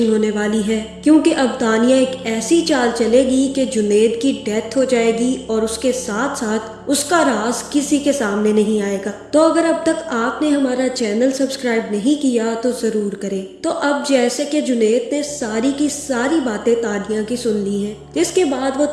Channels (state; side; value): identical; both; correlation 1.00